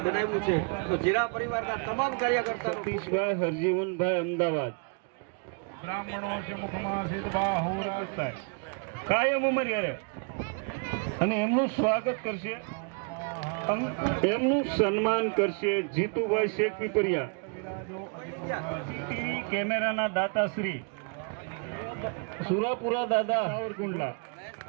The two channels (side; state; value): left; quieter; 38.2 dB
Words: બનાવ્યું છે તો જીરા પરિવારના તમામ કાર્યકર્તા સતીશભાઈ હરજીવનભાઈ અમદાવાદ. બ્રાહ્મણો છે મુખમાં સિદ્ધબા હોરા કાયમ ઉમરિયારે અને એમનું સ્વાગત કરશે, એમનું સન્માન કરશે જીતુભાઈ શેખ પીપરિયા, ટીવી કેમેરાના દાતાશ્રી સુરાપુરા દાદા સાવરકુંડલા,